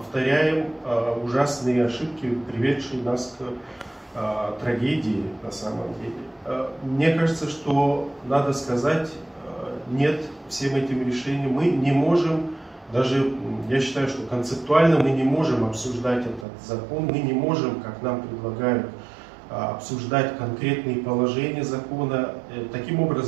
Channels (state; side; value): drops out; left; at 16.4 s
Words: ужасные ошибки, приведшие нас к трагедии на самом деле. Мне кажется, что надо сказать нет всем этим решениям. Мы не можем, даже я считаю, что концептуально мы не можем обсуждать этот закон, мы не можем, как нам предлагают, обсуждать конкретные положения закона. Таким